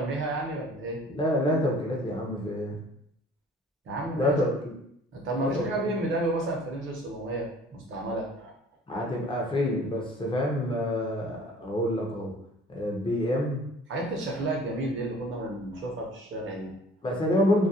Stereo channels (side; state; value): both; normal; correlation 0.51